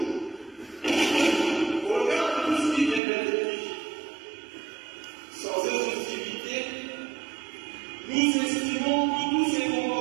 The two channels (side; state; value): left; drops out; at 3.0 s